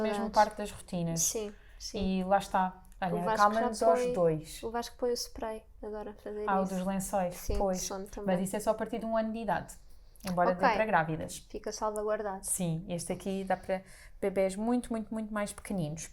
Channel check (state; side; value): identical; both; correlation 1.00